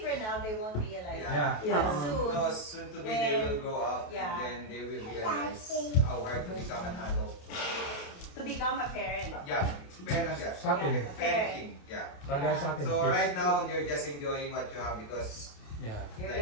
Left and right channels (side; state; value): right; late; 28 ms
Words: now they won't realize. Yeah. But No, soon, soon to be they will grow up Yeah. and then they will realize how hard to become an adult. to become a parent. Yeah, parent, yeah. Sa atin. Parenting, yeah. Kagaya sa atin. So kids. right now, you're just enjoying what you have because Yeah. You're like,